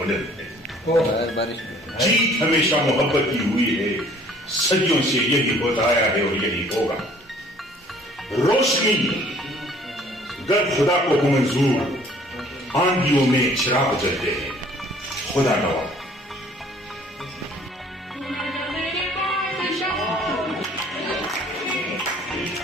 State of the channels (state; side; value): normal; both; correlation 0.55